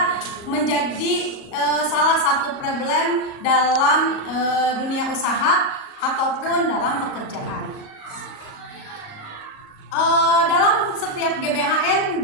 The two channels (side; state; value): right; late; 37 ms